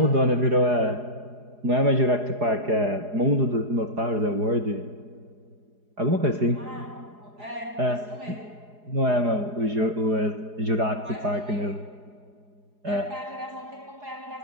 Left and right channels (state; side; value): late; left; 4.8 ms